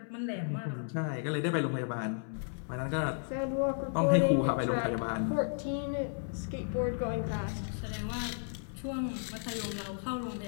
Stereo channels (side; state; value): right; silent; 55 dB below the other